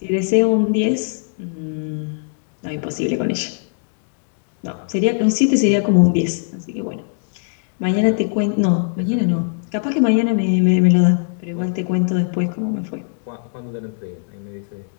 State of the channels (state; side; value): silent; right; digital silence